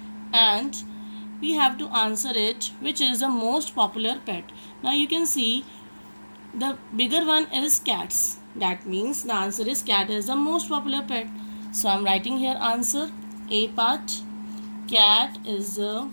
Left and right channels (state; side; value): inverted; both; correlation -1.00